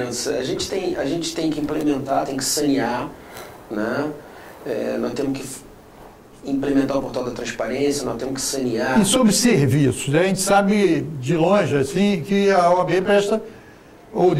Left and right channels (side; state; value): both; identical; correlation 1.00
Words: A gente tem que implementar, tem que sanear, né? Nós temos que implementar o portal da transparência, nós temos que sanear. E sobre serviços, a gente sabe de longe assim que a OAB presta, ou